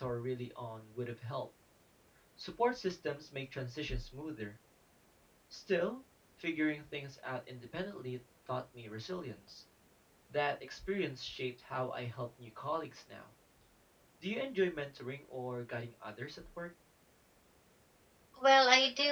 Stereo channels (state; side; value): identical; both; correlation 1.00